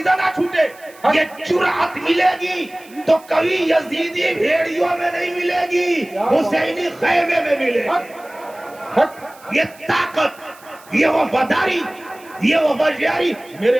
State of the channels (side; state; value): right; noise; hiss, 25 dB below the sound